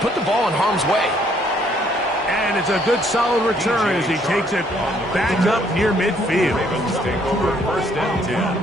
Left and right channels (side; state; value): both; normal; correlation 0.66